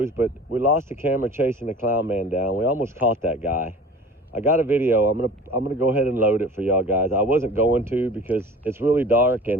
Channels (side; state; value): both; normal; correlation 0.41